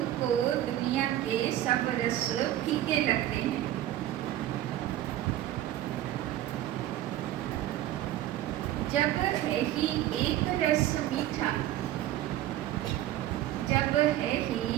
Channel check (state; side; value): quieter; left; 13.4 dB